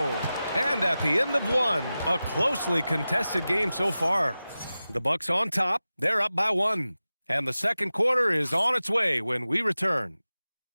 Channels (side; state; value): both; inverted; correlation -0.95